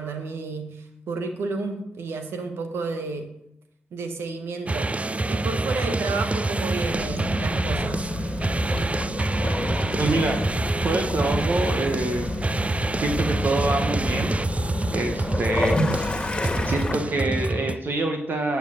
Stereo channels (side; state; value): both; normal; correlation 0.82